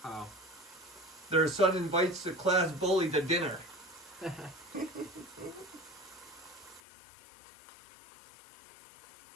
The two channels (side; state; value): right; drops out; at 6.8 s